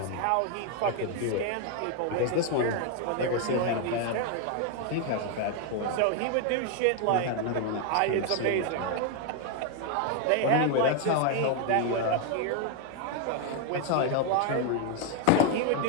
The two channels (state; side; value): different; both; correlation 0.01